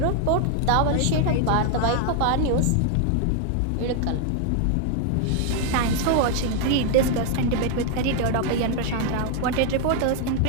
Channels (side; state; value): both; different; correlation 0.00